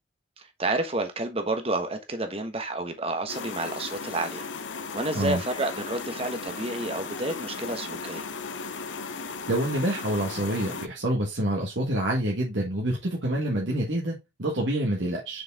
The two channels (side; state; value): both; normal; correlation 0.39